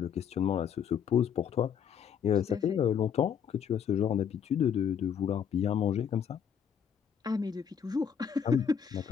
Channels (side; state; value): right; quieter; 7.9 dB